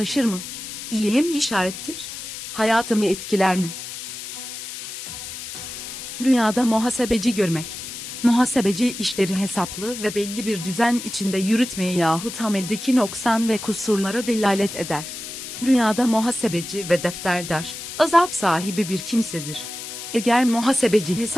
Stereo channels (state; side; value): noise; left; hiss, 9 dB below the sound